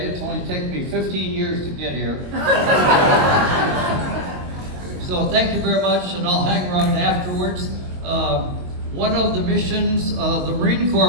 It's only taken me 15 years to get here. So thank you very much, and I'll hang around afterwards. One of the missions, the Marine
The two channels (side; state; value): left; late; 22 ms